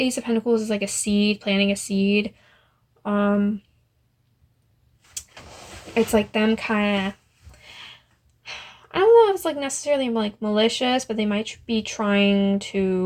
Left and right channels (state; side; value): identical; both; correlation 1.00